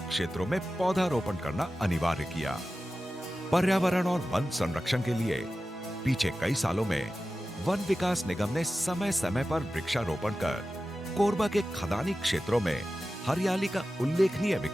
क्षेत्रों में पौधारोपण करना अनिवार्य किया। पर्यावरण और वन संरक्षण के लिए पीछे कई सालों में वन विकास निगम ने समय समय पर वृक्षारोपण कर कोरबा के खदानी क्षेत्रों में हरियाली का उल्लेखनीय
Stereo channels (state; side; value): normal; both; correlation 0.94